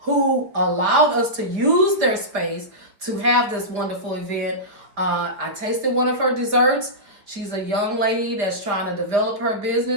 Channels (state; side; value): late; left; 4.9 ms